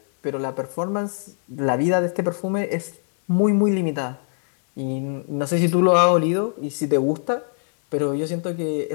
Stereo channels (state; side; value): silent; right; 63 dB below the other